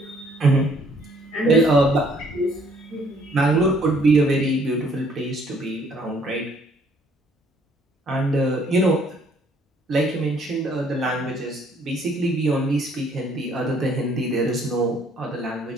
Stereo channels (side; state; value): both; normal; correlation 0.63